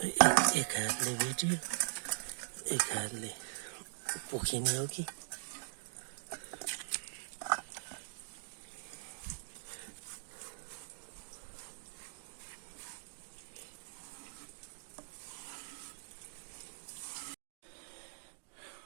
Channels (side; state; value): left; silent; digital silence